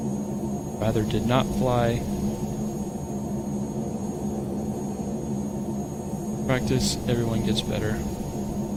rather did not fly. Practice, everyone gets better.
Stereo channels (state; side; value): identical; both; correlation 1.00